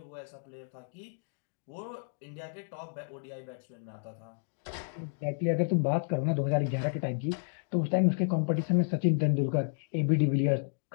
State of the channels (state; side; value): silent; right; digital silence